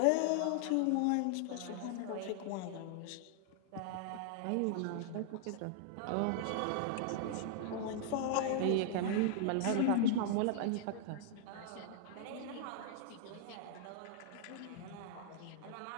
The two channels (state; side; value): different; both; correlation -0.01